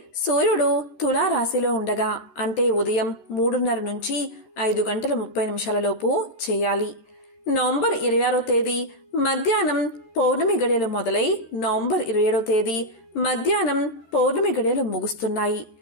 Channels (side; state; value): right; late; 13 ms